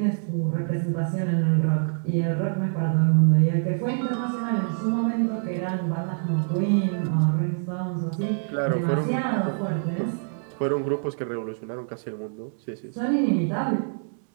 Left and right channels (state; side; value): silent; left; digital silence